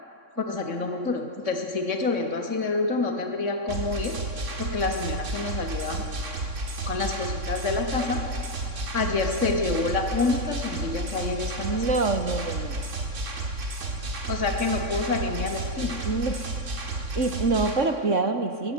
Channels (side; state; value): left; late; 3.6 ms